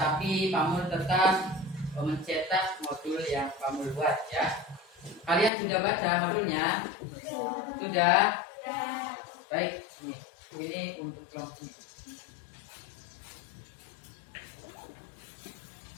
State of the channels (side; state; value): right; drops out; at 5.5 s